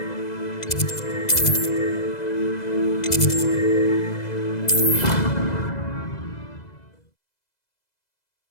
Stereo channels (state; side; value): late; right; 2.0 ms